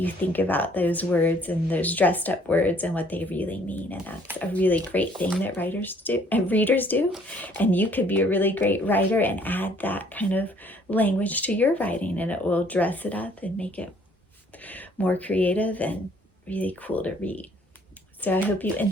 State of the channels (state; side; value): normal; both; correlation 0.60